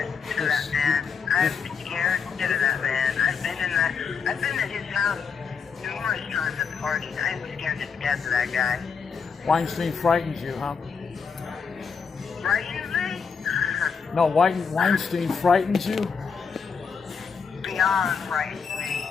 scared of that man. I'm scared of that man. I've been at his house numerous times at parties. I'm scared to death of that guy. Weinstein frightens you, huh? Frightens me? No, Weinstein frightens you? Beyond frightens me.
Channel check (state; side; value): quieter; right; 5.9 dB